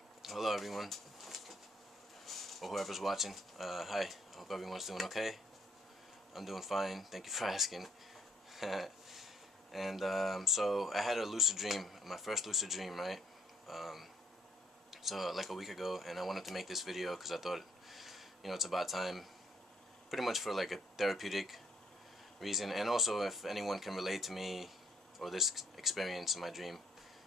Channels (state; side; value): normal; both; correlation 0.67